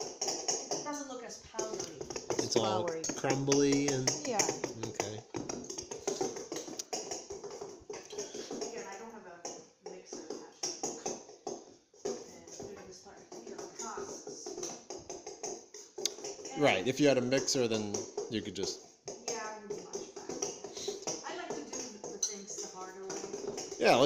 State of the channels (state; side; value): identical; both; correlation 1.00